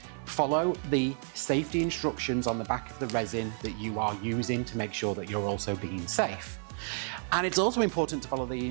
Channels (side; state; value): left; silent; 57 dB below the other